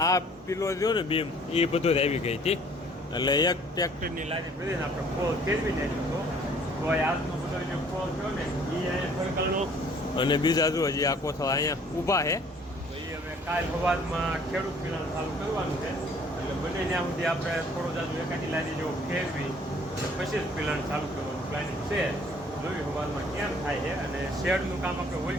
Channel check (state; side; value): normal; both; correlation 0.57